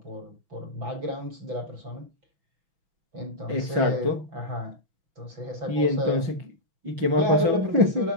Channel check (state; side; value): late; left; 5.5 ms